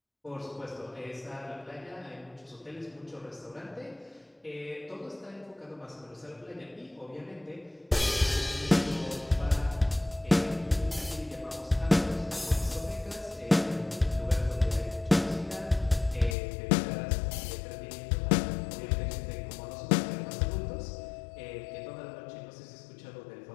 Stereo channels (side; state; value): right; drops out; at 16.4 s